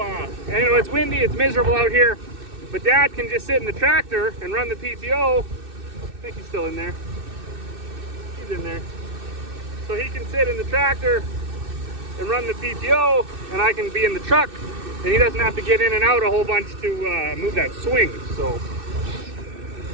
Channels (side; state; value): left; late; 2.6 ms